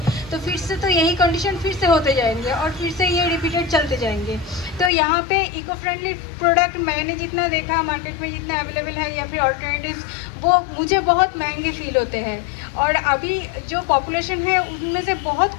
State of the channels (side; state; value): right; drops out; at 4.9 s